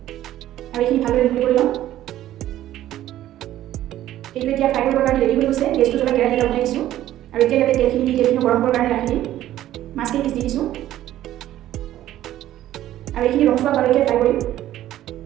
আৰু এইখিনি ভালদৰে মিহলি কৰি ল'ম। এইটো এতিয়া ফ্ৰাই কৰিবৰ কাৰণে ৰেডি হৈ গৈছে। গেছটো জ্বলাই কেৰাহী এটা উঠাই দিছোঁ আৰু এতিয়া ইয়াতে তেলখিনি গৰম কৰিবৰ কাৰণে ৰাখি দিম। মাছখিনি পিচ দি দিছোঁ আৰু এইখিনি ৰঙচুৱা হোৱালৈকে ফ্ৰাই কৰিম।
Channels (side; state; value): left; quieter; 13.3 dB